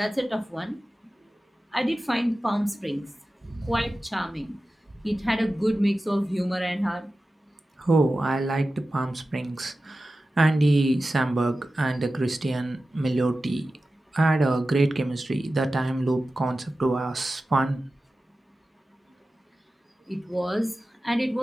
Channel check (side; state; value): both; normal; correlation 0.94